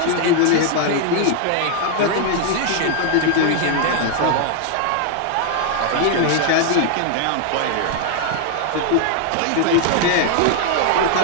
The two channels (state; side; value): different; both; correlation 0.00